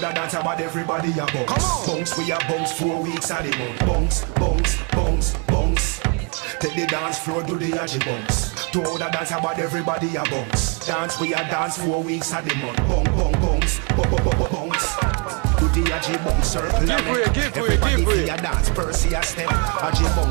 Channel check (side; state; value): left; quieter; 33.5 dB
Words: dance about everybody a bounce. Come on. Bounce, we a bounce 4 weeks and the month. Bounce, bounce, bounce, bounce. Take the dance floor, do the Aji bounce. To the dance about everybody a bounce. Dance, we a dance 4 weeks and the month. Bounce, bounce. Do the Aji bounce circle a make. Everybody feel a dance, Percy a step. Aji